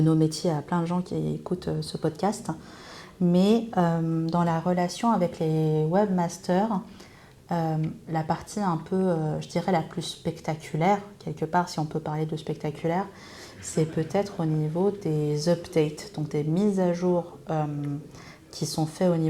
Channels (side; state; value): both; identical; correlation 1.00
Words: nos métiers à plein de gens qui écoutent ce podcast. Mais dans la relation avec les webmasters, la partie un peu, je dirais, la plus spectaculaire, quelque part, si on peut parler de spectaculaire, c'est peut-être au niveau des updates, donc des mises à jour qui sont faites au